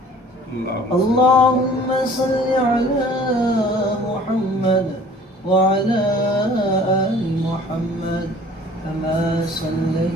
اللهم صل على محمد وعلى آل محمد كما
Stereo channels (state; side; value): normal; both; correlation 0.50